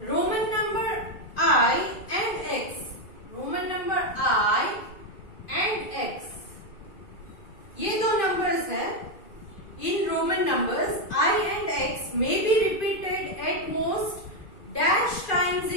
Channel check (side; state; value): right; late; 2.5 ms